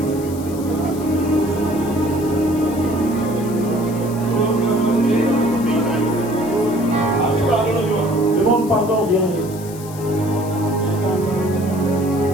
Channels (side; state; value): left; noise; hiss, 17 dB below the sound